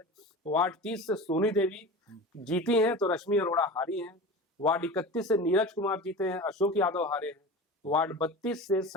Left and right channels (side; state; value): both; normal; correlation 0.33